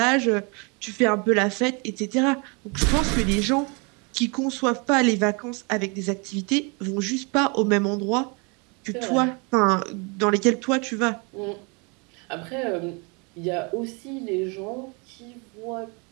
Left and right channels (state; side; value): quieter; left; 31.6 dB